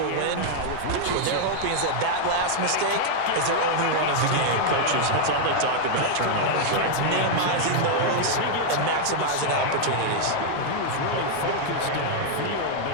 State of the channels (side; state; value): both; different; correlation 0.00